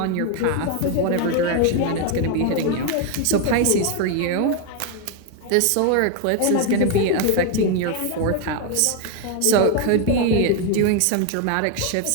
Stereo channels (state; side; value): different; both; correlation 0.01